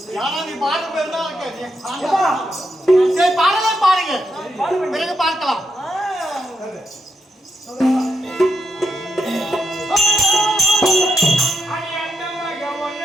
யாரா நீ பாரு பேர் தான் சரி பாடலே பாருங்க பிறகு பார்க்கலாம்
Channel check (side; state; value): both; normal; correlation 0.82